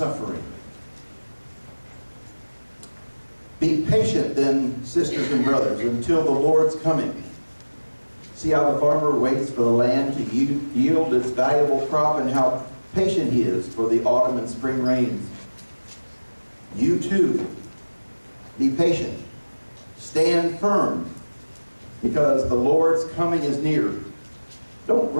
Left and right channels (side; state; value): both; inverted; correlation -1.00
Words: Be patient then, sisters and brothers, until the Lord's coming. See how the farmer waits for the land to yield its valuable crop, and how patient he is for the autumn and spring rains. You too, be patient. Stand firm, because the Lord's coming is near. Don't